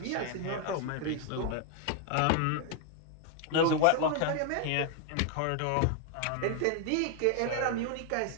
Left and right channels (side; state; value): both; different; correlation 0.00